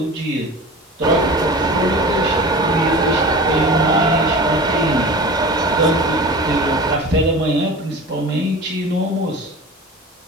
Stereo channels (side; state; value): both; normal; correlation 0.35